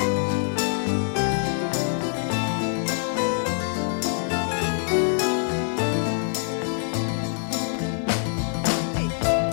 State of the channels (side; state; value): right; silent; digital silence